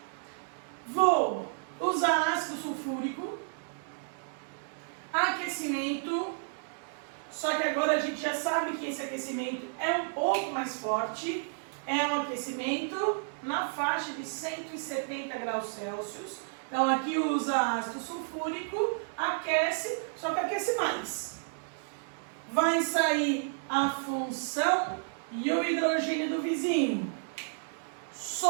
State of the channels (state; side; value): silent; left; digital silence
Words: Vou usar ácido sulfúrico, aquecimento, só que agora a gente já sabe que esse aquecimento é um pouco mais forte, é um aquecimento na faixa de 170 graus Celsius. Então aqui usa ácido sulfúrico, aquece, só que aquece mais. Vai sair a função e o hidrogênio do vizinho.